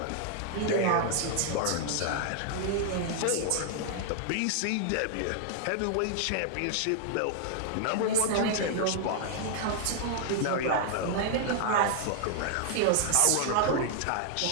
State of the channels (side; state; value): both; different; correlation 0.00